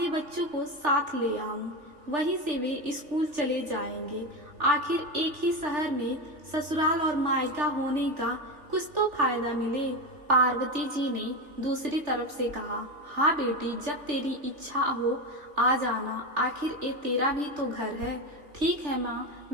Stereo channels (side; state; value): left; late; 3.4 ms